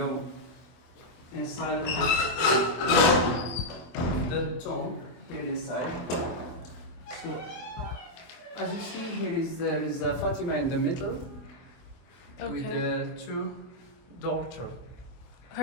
inside the tomb here inside. So, as you see here there is Fatima in the middle with the two daughters.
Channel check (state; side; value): late; right; 24 ms